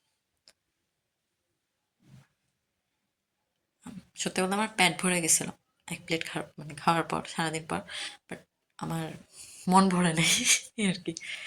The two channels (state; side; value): identical; both; correlation 1.00